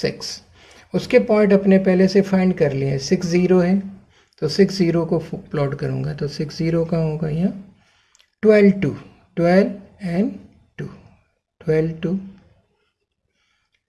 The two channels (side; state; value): both; identical; correlation 1.00